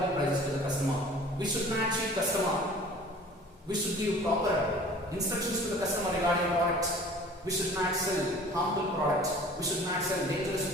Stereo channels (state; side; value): normal; both; correlation 0.46